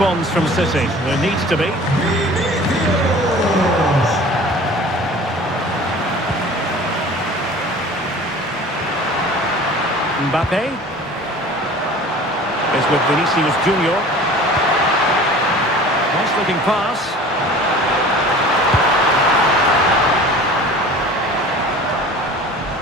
from City? There needs to be. Mbappe is with Vinicius Junior. Nice looking pass.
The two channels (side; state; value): both; normal; correlation 0.43